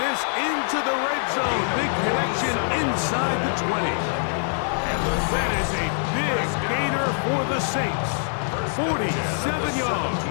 into the red zone. Big connection inside the 20. And that is a big gainer for the Saints. 47 yards.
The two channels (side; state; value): right; silent; 63 dB below the other